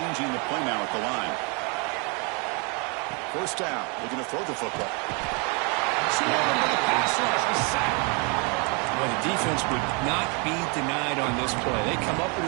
the play now at the line. First down. Looking to throw the football. Swarmed by the pass rush. The sack. Well, the defense would not be denied on this play. They come up with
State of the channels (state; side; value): quieter; left; 33.1 dB